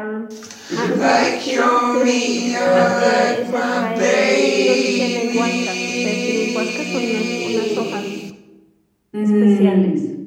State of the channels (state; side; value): identical; both; correlation 1.00